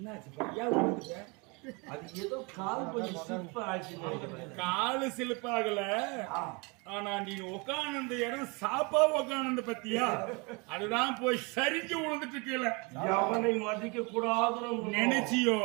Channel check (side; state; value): left; quieter; 29.6 dB